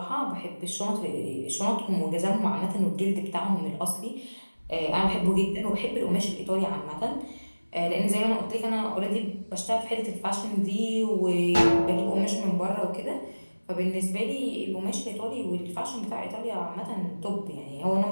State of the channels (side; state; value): both; inverted; correlation -1.00